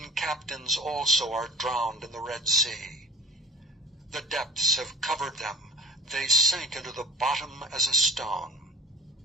captains also are drowned in the Red Sea. The depths have covered them, they sank into the bottom as a stone.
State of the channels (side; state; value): both; normal; correlation 0.41